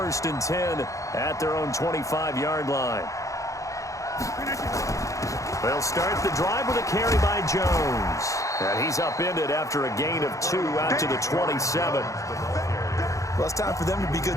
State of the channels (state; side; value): late; right; 0.15 ms